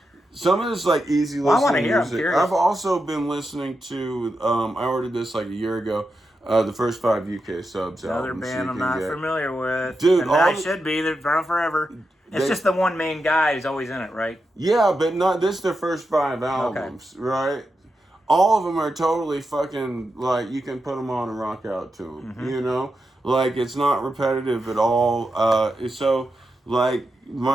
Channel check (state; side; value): normal; both; correlation 0.87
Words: some of this like easy listening I want to hear. music. I'm curious. I've also been lining to. I ordered this like a year ago. The first 5 UK subs. Another albums band you I'm can not get. familiar with. Dude, and all I the- should be. They're around forever. It's just the one main guy who's always in it, right? Yeah, but not this. Their first 5 albums, right? All of them are totally fucking like you can put them on and rock out to them. You know, like it's not repetitive at all. So like